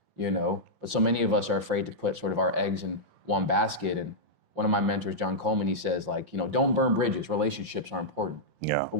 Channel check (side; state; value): left; late; 5.7 ms